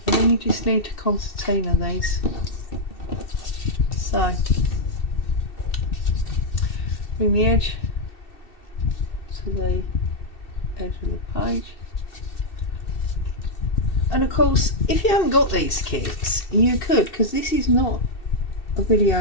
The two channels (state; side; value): late; right; 2.7 ms